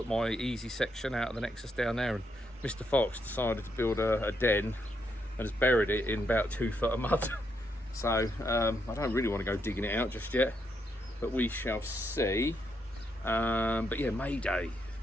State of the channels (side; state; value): both; normal; correlation 0.78